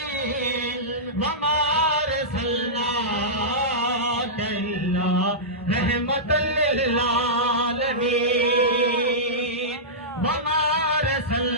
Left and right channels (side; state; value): both; normal; correlation -0.15